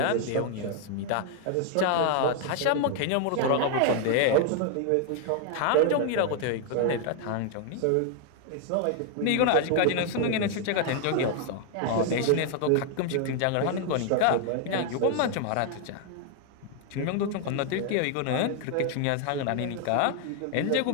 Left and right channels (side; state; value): both; different; correlation 0.00